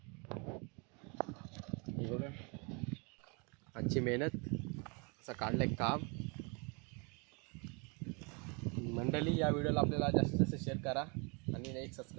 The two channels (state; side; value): quieter; left; 32.7 dB